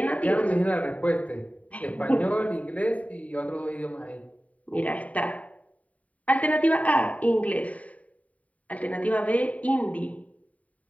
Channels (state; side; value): late; right; 0.069 ms